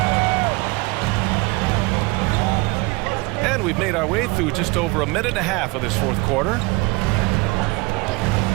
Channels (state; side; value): quieter; left; 24.3 dB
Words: And we've made our way through just over a minute and a half of this fourth quarter.